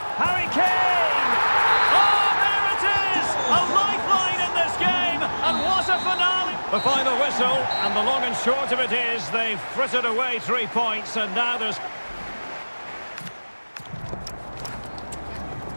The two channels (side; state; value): both; inverted; correlation -1.00